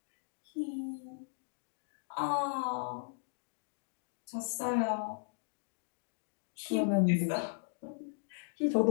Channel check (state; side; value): silent; right; digital silence